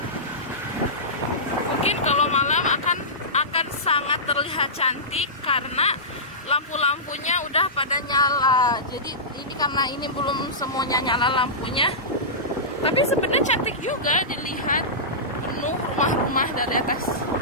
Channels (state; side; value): normal; both; correlation -0.18